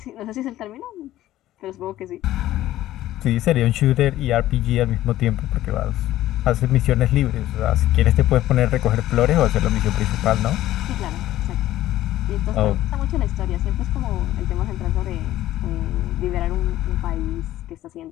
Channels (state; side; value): quieter; right; 14.3 dB